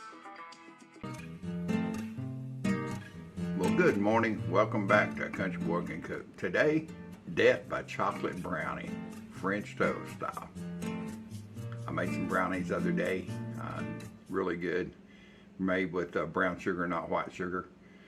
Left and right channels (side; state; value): both; identical; correlation 1.00